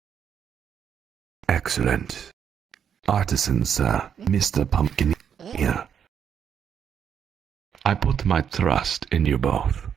Excellent. Artisan, sir, Mr. Pumpkineer. I put my trust in you both.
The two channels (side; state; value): left; quieter; 8.1 dB